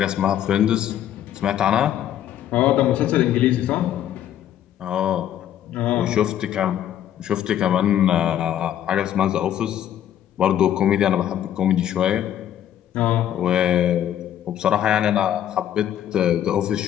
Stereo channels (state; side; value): quieter; right; 11.0 dB